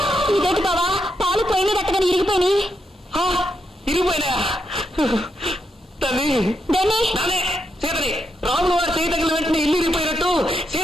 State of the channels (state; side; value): normal; both; correlation 0.81